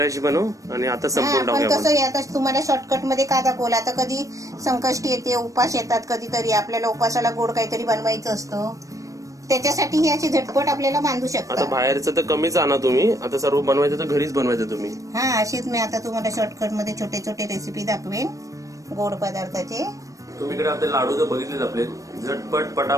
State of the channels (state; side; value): late; left; 0.16 ms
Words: बनव आणि आता संपून पण टाकूया कसं आहे, आता तुम्हाला शॉर्टकट मध्ये का दाखवलं. आता कधी संकष्टी येते, उपास येतात कधीतरी, आपल्याला उपासाला गोड काहीतरी बनवायचं असतं, त्याच्यासाठी ही अशी झटपट आपल्याला बांधू आता शकता. बाहेरचं तर कमीच आणा तुम्ही. आता सर्व बनवायचं तर घरीच बनवायचं तुम्ही. हा, अशीच मी आता तुम्हाला शॉर्टकट मध्ये छोटे छोटे रेसिपी दाखवेन गोड पदार्थाचे. तुम्ही इकडे आपले लाडू तर बघितलेच आपले, झटपट